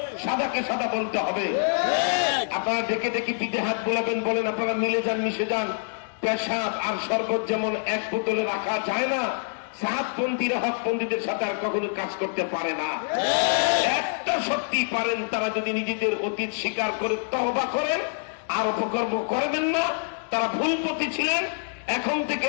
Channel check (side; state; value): right; silent; digital silence